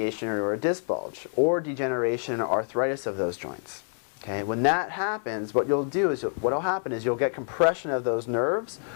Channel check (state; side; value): silent; right; 55 dB below the other